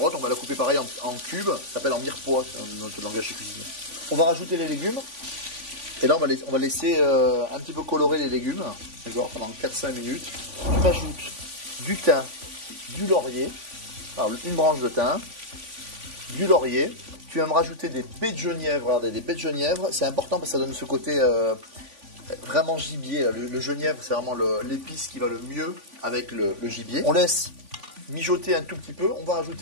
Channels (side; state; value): left; late; 3.5 ms